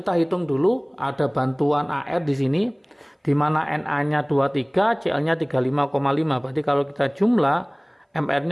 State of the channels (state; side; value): identical; both; correlation 1.00